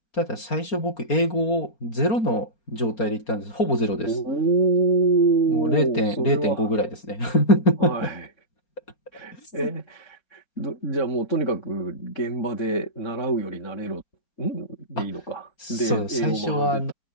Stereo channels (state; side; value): late; right; 4.3 ms